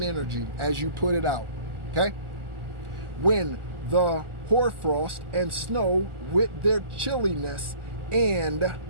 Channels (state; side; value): late; left; 1.4 ms